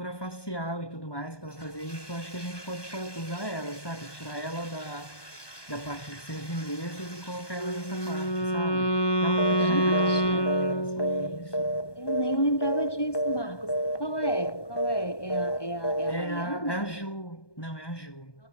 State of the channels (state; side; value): late; right; 1.2 ms